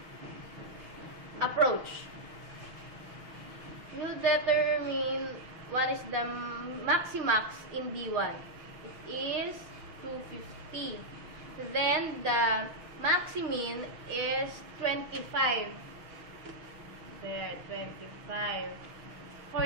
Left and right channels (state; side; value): late; left; 6.3 ms